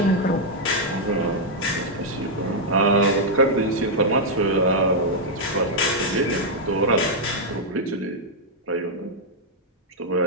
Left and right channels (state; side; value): normal; both; correlation -0.03